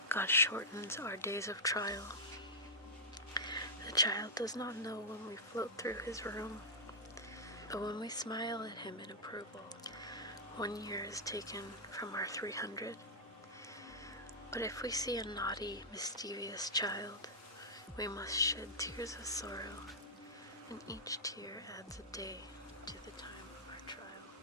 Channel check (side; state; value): both; normal; correlation -0.08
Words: God shortens our days of trial. The child does not know when we float through his room, but when we smile at him in approval, 1 year is taken from our 300. But if we see a naughty, mischievous child, we must shed tears of sorrow, and each tear adds a day